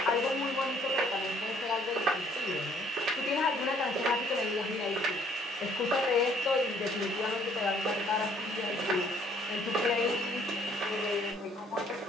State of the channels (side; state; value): both; normal; correlation 0.62